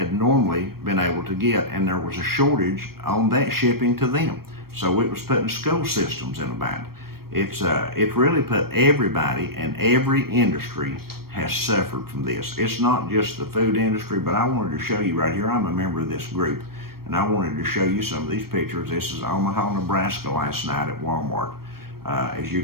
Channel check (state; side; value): late; left; 0.94 ms